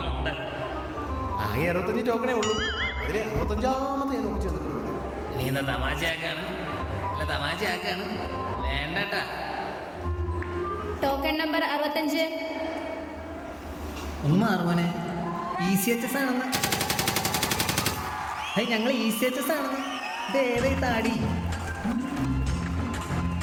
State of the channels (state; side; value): identical; both; correlation 1.00